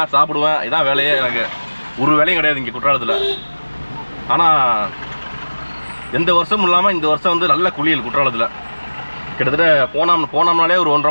சாப்பிடுவேன். இதான் வேலையே எனக்கு. ஒரு வேலையும் கிடையாது இங்கே குற்றாலத்தில். ஆனால் எந்த வருஷமும் இல்லாமல் இந்த வருஷம் வந்து நல்ல குளியல் குற்றாலத்தில். கிட்டத்தட்ட போனோம்னாலே ஒரு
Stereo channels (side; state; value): both; inverted; correlation -1.00